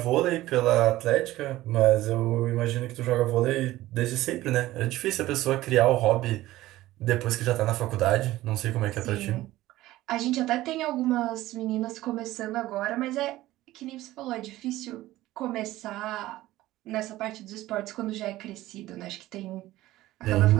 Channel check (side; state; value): left; quieter; 16.3 dB